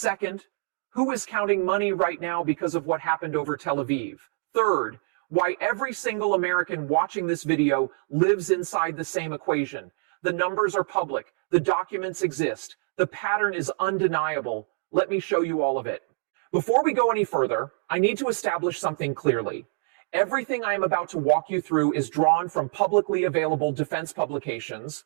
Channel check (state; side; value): silent; left; 58 dB below the other